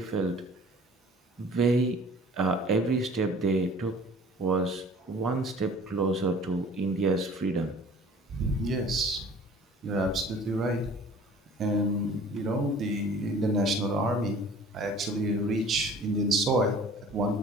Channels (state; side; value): normal; both; correlation 0.48